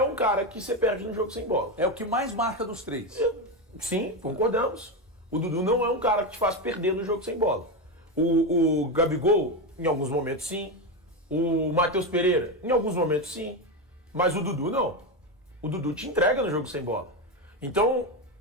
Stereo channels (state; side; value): normal; both; correlation 0.13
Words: um cara que você perde no jogo sem bola. É o que mais marca dos três. Sim, concordamos. O Dudu não é um cara que te faz perder no jogo sem bola. O Gabigol, em alguns momentos, sim. O Matheus Pereira, em alguns momentos, sim. Mas o Dudu, não. O Dudu te entrega no jogo sem bola. Então,